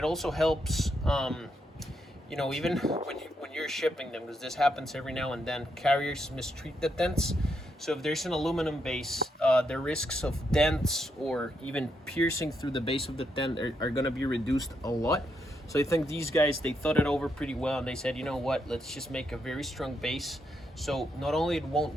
also helps, even when you're shipping them, because this happens every now and then, carriers mistreat the tents. So if there's an aluminum base, the risks of dents or even piercing through the base of the tent are going to be reduced a lot. So I think these guys, they thought it over pretty well, and they said, you know what, let's just make a very strong base. So not only it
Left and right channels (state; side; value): normal; both; correlation 0.80